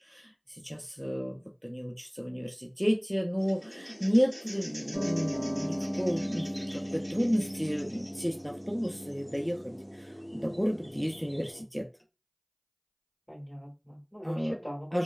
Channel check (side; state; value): both; identical; correlation 1.00